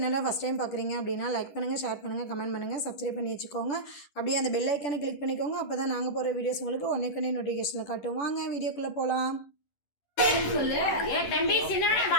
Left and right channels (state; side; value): late; right; 10 ms